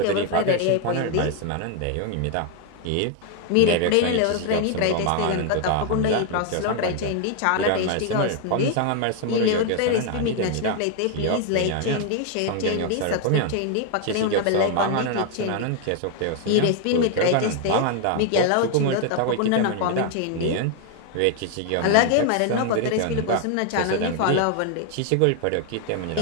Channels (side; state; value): both; different; correlation 0.01